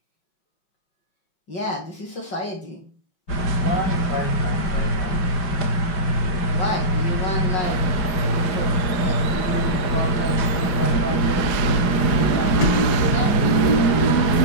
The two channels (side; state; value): right; late; 4.9 ms